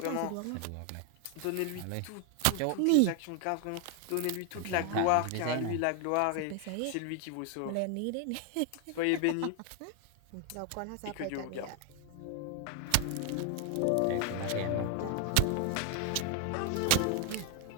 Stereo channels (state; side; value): different; both; correlation 0.00